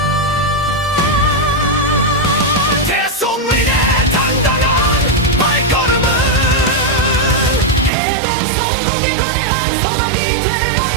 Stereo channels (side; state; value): left; drops out; at 7.9 s